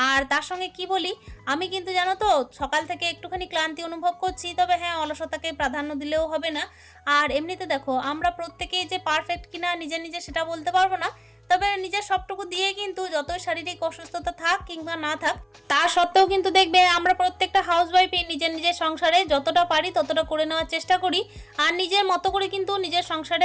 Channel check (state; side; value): identical; both; correlation 1.00